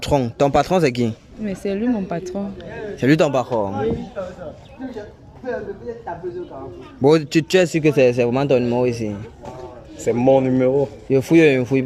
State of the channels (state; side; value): identical; both; correlation 1.00